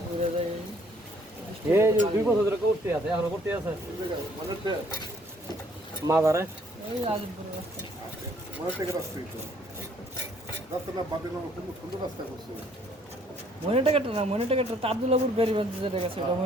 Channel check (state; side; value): normal; both; correlation 0.63